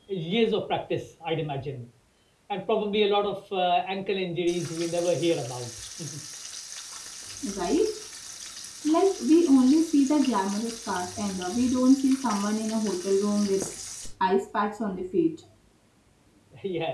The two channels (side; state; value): both; identical; correlation 1.00